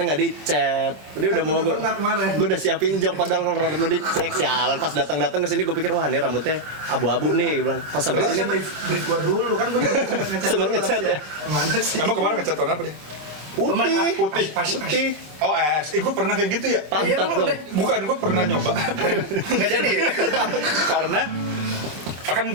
nggak dicet. Tadi udah mau gue udah siapin jok, padahal kalau rambut lo dicek, sialan pas datang ke sini gue pikir wah ini rambutnya abu-abu nih, gue bilang pas sampai sini. Brief gue dulu kan gue sempat ngecat ya. Mana sih? Emang kemarin ngecat warna apa deh? Putih. Oh gue pernah kayak gitu ya? Pantat dong. Bukan, gue pernah nyoba. Nggak jadi. Karena kan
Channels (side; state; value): left; late; 26 ms